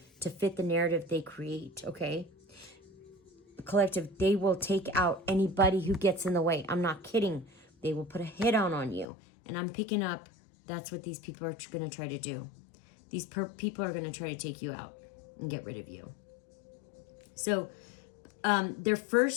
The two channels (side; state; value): right; drops out; at 9.1 s